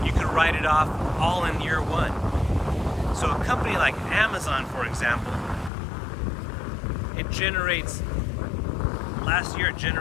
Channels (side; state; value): right; drops out; at 5.7 s